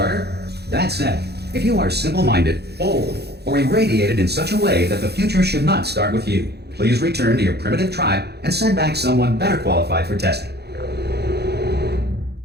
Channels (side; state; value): left; late; 0.48 ms